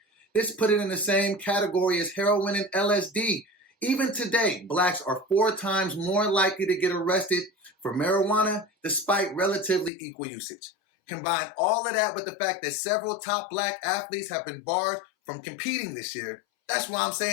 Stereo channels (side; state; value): right; drops out; at 9.9 s